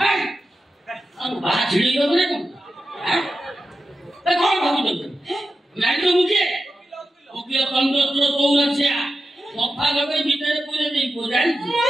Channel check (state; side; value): normal; both; correlation 0.91